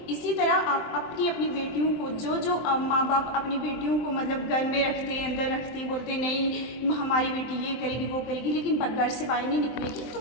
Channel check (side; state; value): right; late; 23 ms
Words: इसी तरह आप अपनी अपनी बेटियों को जो माँ बाप अपनी बेटियों को मतलब घर में रखते हैं, अंदर रखते हैं, बोलते नहीं हमारी बेटी ये करेगी वो करेगी, लेकिन घर से बाहर नहीं निकलेगी।